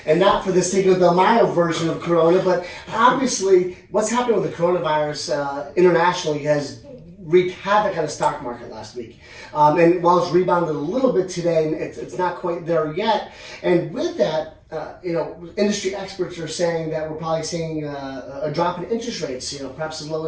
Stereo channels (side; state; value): both; identical; correlation 1.00